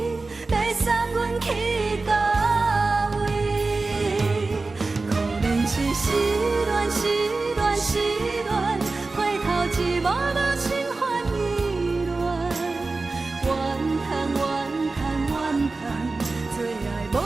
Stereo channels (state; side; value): quieter; left; 3.6 dB